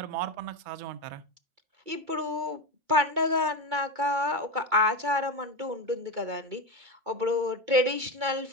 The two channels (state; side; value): late; left; 2.2 ms